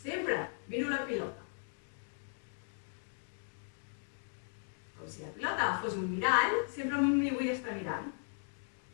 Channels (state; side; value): silent; right; digital silence